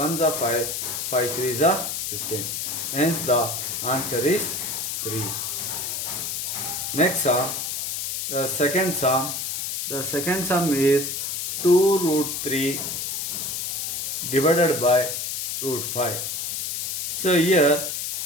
are 5, 5 3s are 15. Hence the answer is 3. Next sum, the second sum. The second sum is 2 root 3 divided by root 5. So here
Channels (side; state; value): left; noise; hiss, 3 dB below the sound